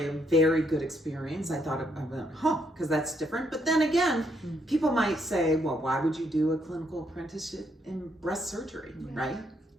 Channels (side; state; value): both; normal; correlation 0.74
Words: a very good experience. I thought, because that's different. But then again, people might say, well, why would you do a clinical apprenticeship in breast surgery, right?